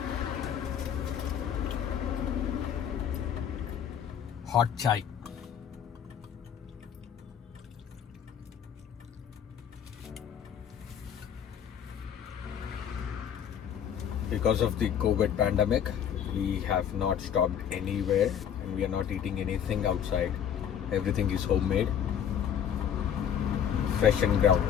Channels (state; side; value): quieter; right; 8.8 dB